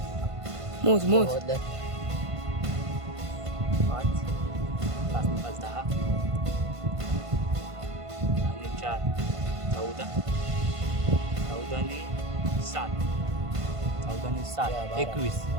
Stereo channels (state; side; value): late; left; 1.5 ms